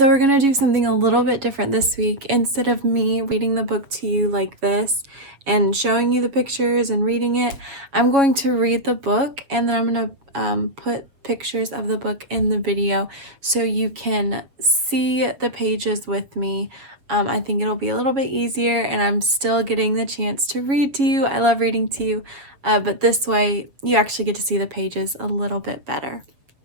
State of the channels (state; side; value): late; left; 7.5 ms